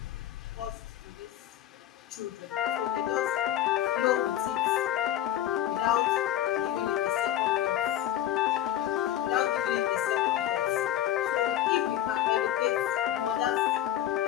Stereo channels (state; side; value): quieter; right; 12.0 dB